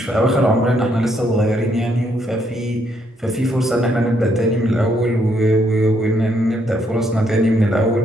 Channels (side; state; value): both; normal; correlation 0.72